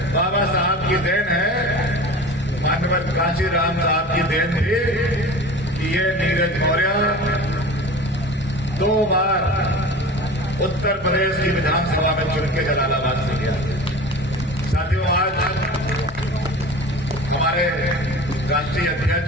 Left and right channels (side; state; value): both; normal; correlation 0.36